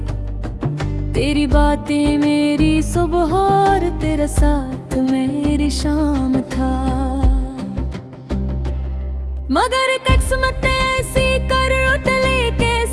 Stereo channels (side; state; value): both; identical; correlation 1.00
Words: तेरी बातें मेरी सुबह और तेरा साथ मेरी शाम था। मगर किस्मत ऐसी करवट लेके